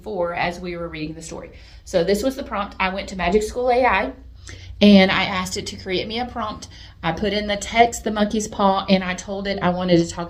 for as we were reading the story. So this was the prompt. I went to Magic School AI and I asked it to create me a prompt. I put in the text, the monkey's paw, and I told it I wanted to talk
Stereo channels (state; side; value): identical; both; correlation 1.00